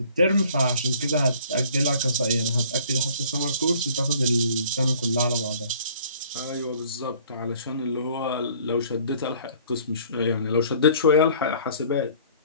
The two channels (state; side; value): inverted; both; correlation -0.54